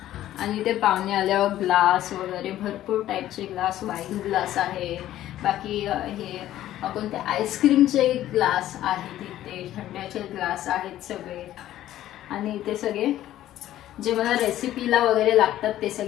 आणि ते पाहुणे आल्यावर ग्लास वगैरे भरपूर टाईपचे ग्लास, वाईन ग्लास आहे, बाकी हे कोणते आईस्क्रीमचे ग्लास आहेत, इथे थंड्याचे ग्लास आहेत सगळे. आणि इथे सगळे जे मला रेसिपीला वगैरे लागतात ते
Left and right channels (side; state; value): right; quieter; 13.3 dB